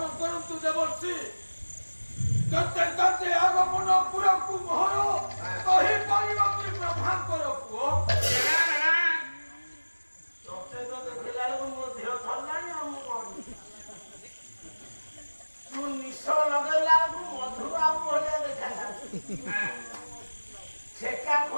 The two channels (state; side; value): inverted; both; correlation -1.00